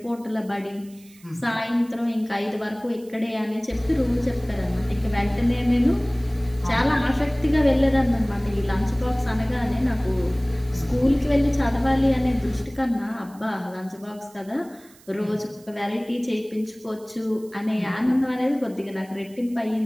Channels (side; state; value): right; noise; hiss, 26 dB below the sound